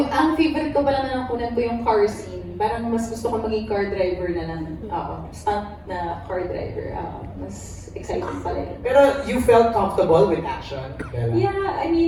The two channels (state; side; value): identical; both; correlation 1.00